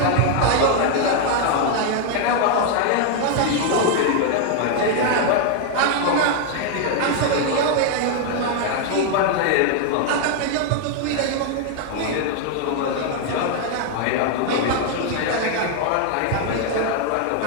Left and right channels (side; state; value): both; different; correlation 0.00